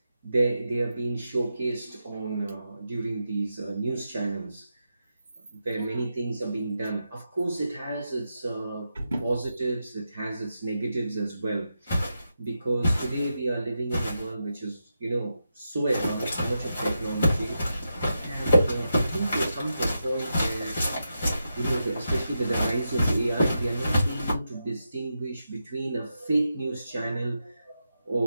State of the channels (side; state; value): both; inverted; correlation -0.87